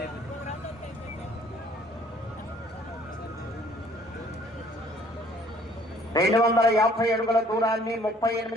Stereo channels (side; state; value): both; normal; correlation 0.58